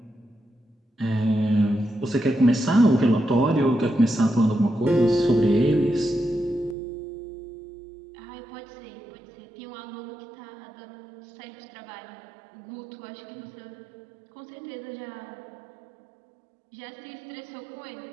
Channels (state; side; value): drops out; left; at 6.8 s